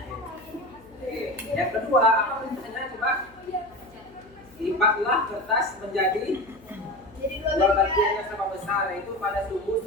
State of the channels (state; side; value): noise; left; hum, 27 dB below the sound